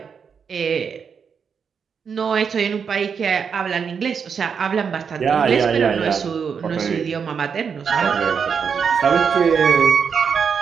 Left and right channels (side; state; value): left; quieter; 6.5 dB